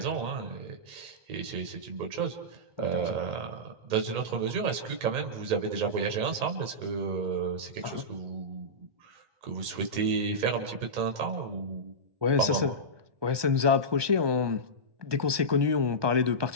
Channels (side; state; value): left; late; 1.2 ms